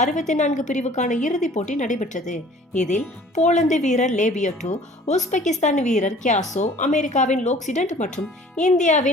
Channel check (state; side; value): normal; both; correlation 0.50